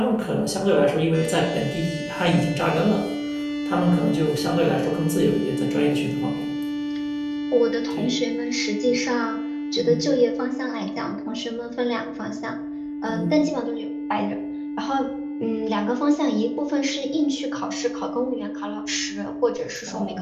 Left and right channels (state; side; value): identical; both; correlation 1.00